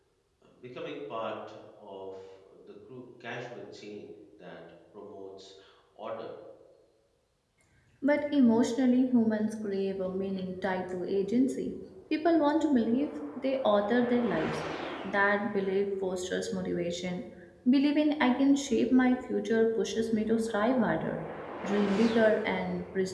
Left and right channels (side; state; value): both; identical; correlation 1.00